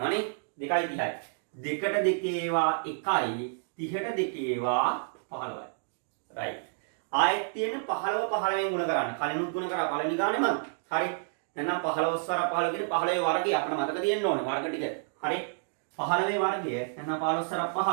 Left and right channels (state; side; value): silent; left; digital silence